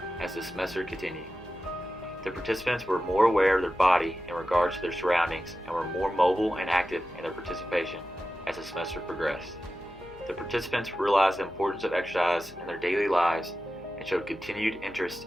as the semester continued. The participants were more aware of their body in regards to their surroundings and were more mobile and active in their participation as the semester progressed. The participants realized the importance of exercise in their daily lives and showed continued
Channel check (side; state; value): left; noise; hum, 23 dB below the sound